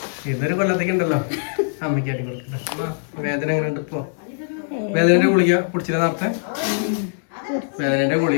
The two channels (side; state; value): right; silent; digital silence